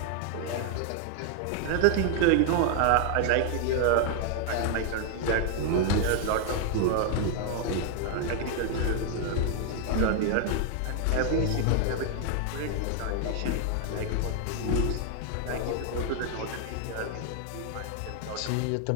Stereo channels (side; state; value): both; different; correlation 0.00